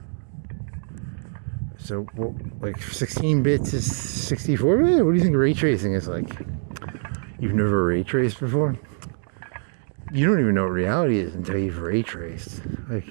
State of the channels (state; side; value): silent; left; 62 dB below the other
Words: So, well, like 16 bits is 64 bit? What do you think ray tracing is like? You've never ray traced before? You don't even know what reality is until you've ray traced.